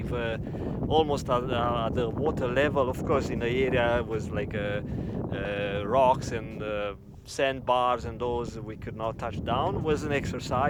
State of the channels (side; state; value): both; identical; correlation 1.00